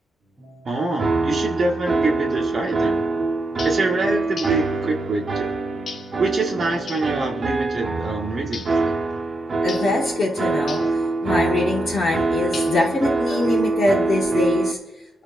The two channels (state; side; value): normal; both; correlation 0.84